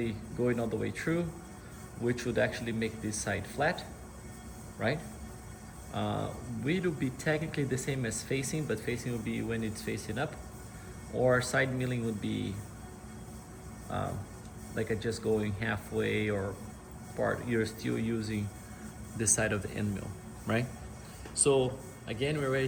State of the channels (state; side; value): identical; both; correlation 1.00